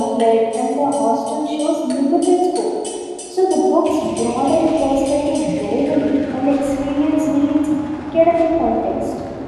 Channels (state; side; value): identical; both; correlation 1.00